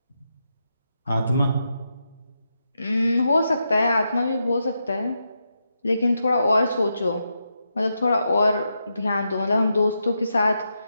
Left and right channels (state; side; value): inverted; both; correlation -0.85